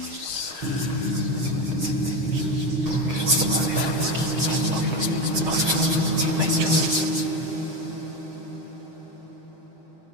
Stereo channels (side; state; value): left; late; 6.4 ms